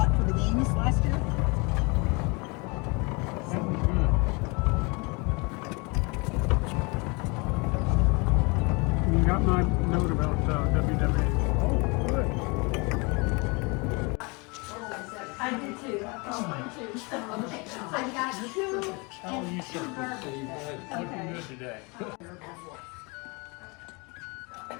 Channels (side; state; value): right; quieter; 29.1 dB